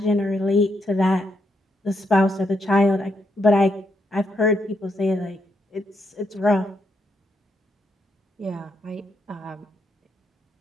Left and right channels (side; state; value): both; normal; correlation 0.79